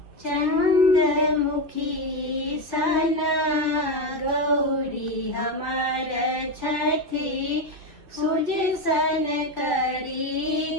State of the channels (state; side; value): late; left; 2.1 ms